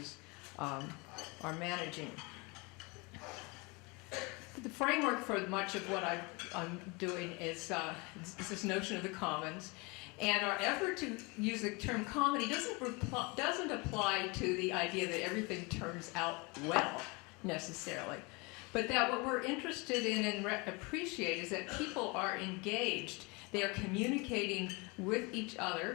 are managing. The framework for much of what I'm doing is this notion of the commons. And our effort to use the term comedy doesn't apply to the idea that everything turns out well, necessarily. But that what we're interested in and appreciate is that people are engaged. They are communicating with each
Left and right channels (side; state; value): right; quieter; 27.9 dB